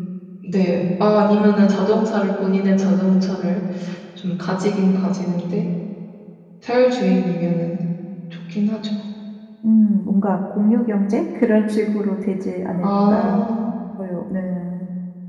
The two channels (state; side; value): identical; both; correlation 1.00